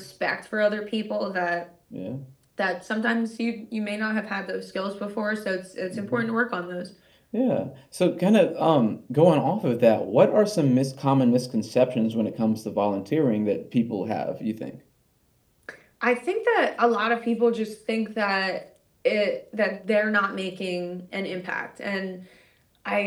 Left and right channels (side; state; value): both; identical; correlation 1.00